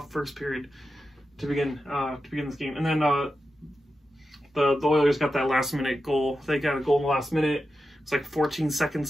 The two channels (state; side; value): normal; both; correlation 0.90